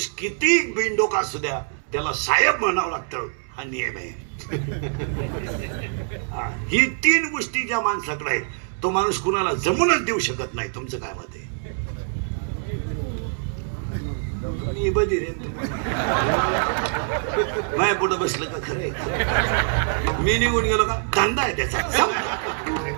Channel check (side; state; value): left; silent; 62 dB below the other